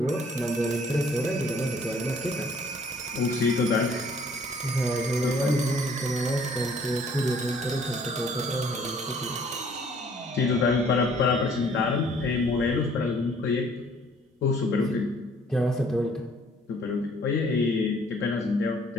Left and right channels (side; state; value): both; normal; correlation 0.58